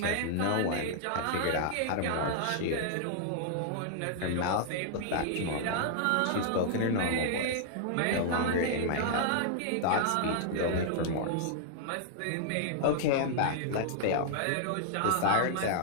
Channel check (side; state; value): both; different; correlation -0.01